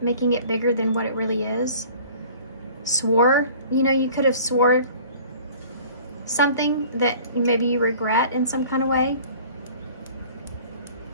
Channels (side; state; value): both; inverted; correlation -0.47